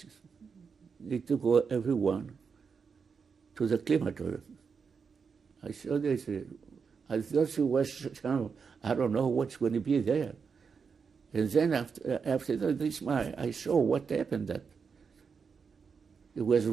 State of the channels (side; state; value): left; quieter; 5.7 dB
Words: they took everyone to the crematorium. I saw this. I thought she was, I don't know what's going to be there. And then after this, I saw what happened. That it was